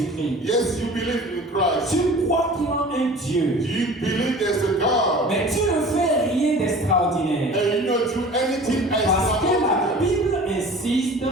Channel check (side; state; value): both; normal; correlation 0.42